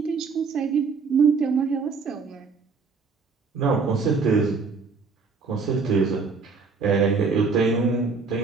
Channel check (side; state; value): left; quieter; 4.7 dB